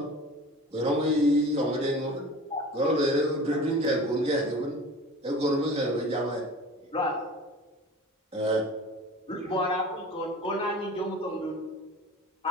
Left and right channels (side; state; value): both; normal; correlation 0.39